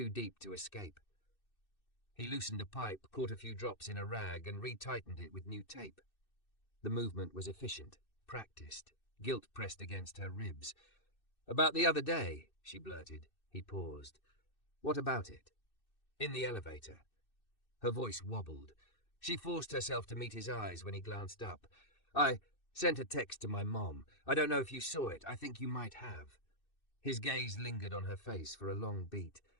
deep to escape." He loosened a pipe, caught a few drops in a rag, and retightened it with new tape. The movement was efficient, practiced, guilt pressed against her ribs. "About the other day," she blurted. He paused. "What about it?" "In the elevator." Her voice wobbled. She forced herself to meet his eyes when he glanced up. "I sent a text to my mom. I don't know if you saw it. I think you might have." His gaze lingered on her face for a long beat.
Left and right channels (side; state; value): right; late; 2.6 ms